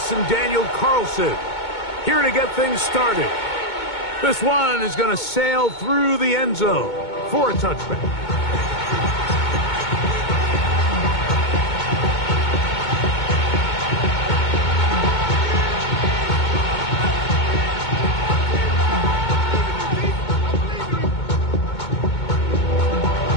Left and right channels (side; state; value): right; late; 2.2 ms